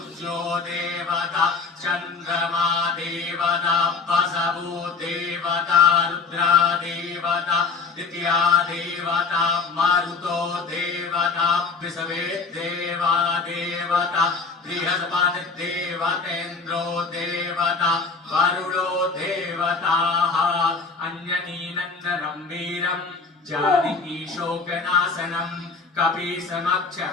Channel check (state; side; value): quieter; right; 4.6 dB